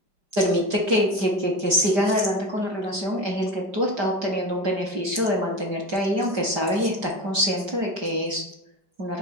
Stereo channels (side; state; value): left; late; 5.0 ms